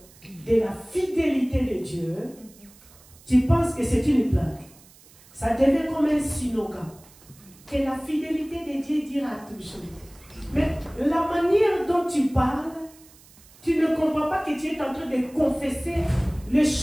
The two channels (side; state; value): right; noise; hiss, 25 dB below the sound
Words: de la fidélité de Dieu, tu penses que c'est une blague. Ça devient comme un slogan. Que la fidélité de Dieu dira toujours. Mais la manière dont tu parles, tu ne comprends pas que tu es en train de confesser les